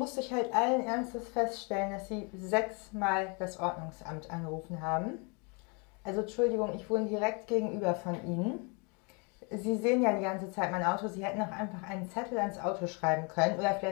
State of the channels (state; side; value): quieter; right; 33.3 dB